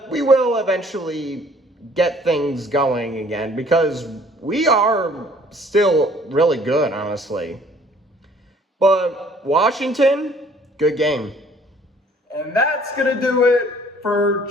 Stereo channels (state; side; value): normal; both; correlation 0.57